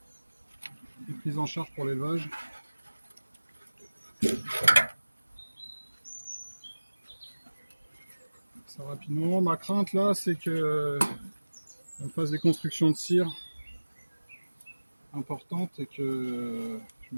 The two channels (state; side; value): inverted; both; correlation -1.00